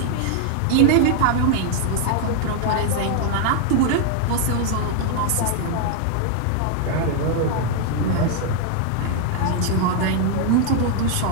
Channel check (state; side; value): different; both; correlation 0.00